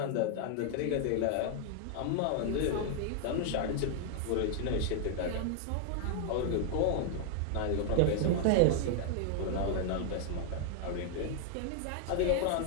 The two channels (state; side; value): different; both; correlation 0.00